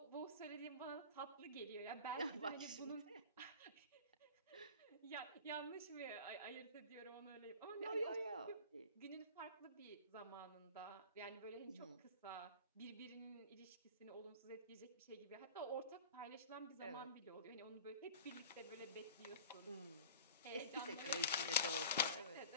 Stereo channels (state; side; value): inverted; both; correlation -0.39